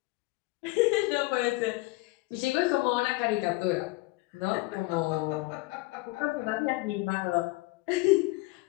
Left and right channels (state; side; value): quieter; right; 22.3 dB